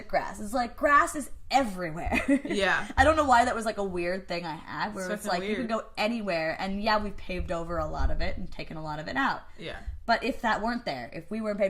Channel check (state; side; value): identical; both; correlation 1.00